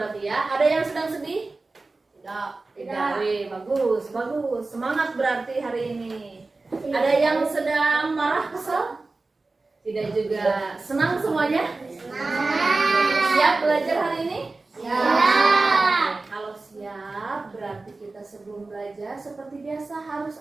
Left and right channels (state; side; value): quieter; left; 3.5 dB